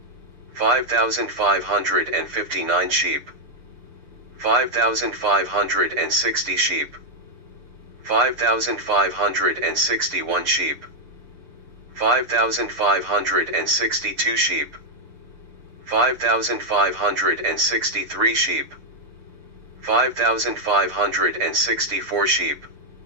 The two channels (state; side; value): late; left; 6.8 ms